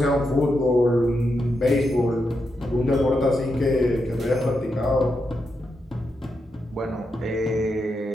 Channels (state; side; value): normal; both; correlation 0.85